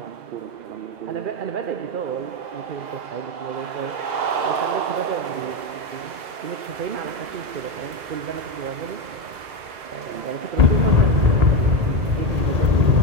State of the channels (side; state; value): left; late; 2.0 ms